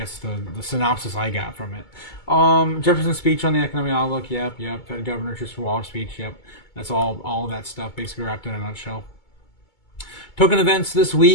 the synopsis I got from it. Jefferson's speech on the economic outlook. Yep. Fed Governor Christopher Waller speech. Yep. That's all of that stuff basically wrapped in a nutshell. Token events this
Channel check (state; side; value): late; right; 2.2 ms